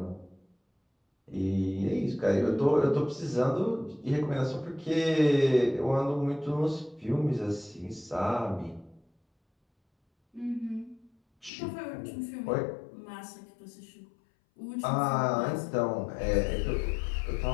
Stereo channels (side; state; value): right; drops out; at 11.5 s